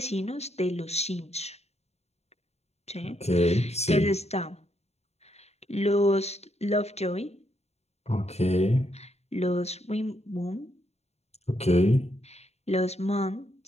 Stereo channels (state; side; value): late; right; 0.31 ms